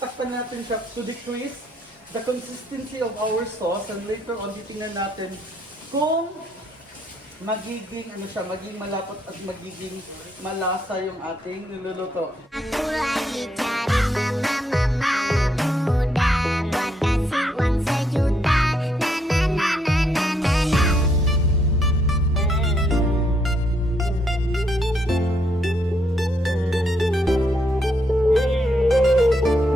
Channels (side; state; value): both; normal; correlation 0.74